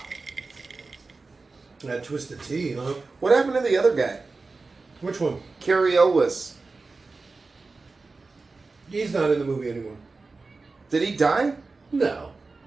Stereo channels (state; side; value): quieter; left; 3.9 dB